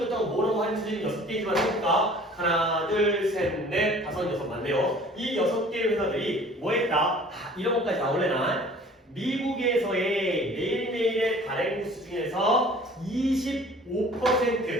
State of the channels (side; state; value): both; normal; correlation 0.49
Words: 갖다가 뭐라고 하는지 6개이지만 해볼까? 하나, 둘, 셋, 넷, 다섯, 여섯 맞네요. 이 6개의 회사들이 뭐 했다? 이런 것까지 나올래나? 미국에서의 매일매일의 발행 부수 중에서